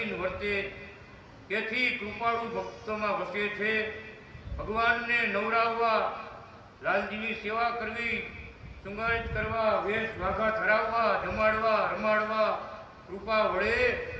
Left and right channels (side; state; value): both; identical; correlation 1.00